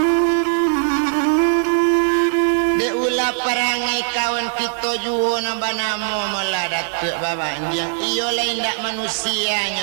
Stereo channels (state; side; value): silent; left; digital silence